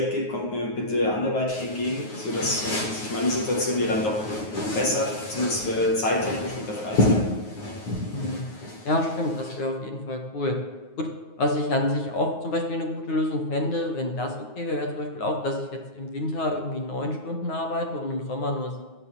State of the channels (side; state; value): right; late; 9.5 ms